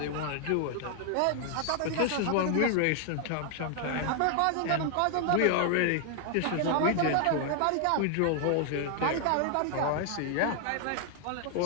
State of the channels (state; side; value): different; both; correlation 0.00